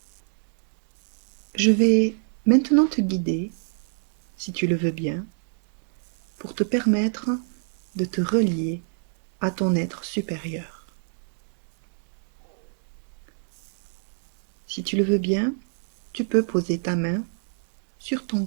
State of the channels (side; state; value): left; silent; digital silence